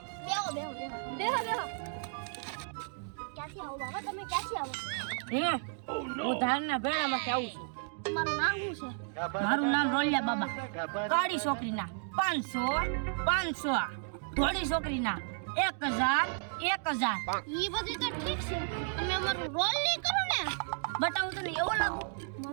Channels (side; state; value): left; silent; 56 dB below the other